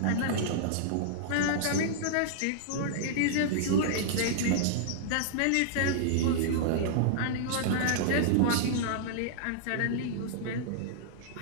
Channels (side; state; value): both; different; correlation -0.02